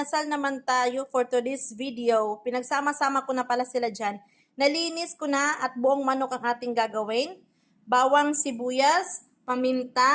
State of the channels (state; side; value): identical; both; correlation 1.00